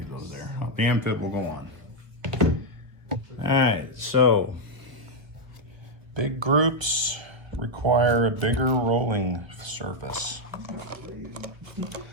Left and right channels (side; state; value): left; late; 1.5 ms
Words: those there. The amphib will go on. All right, so big groups require a bigger rolling surface.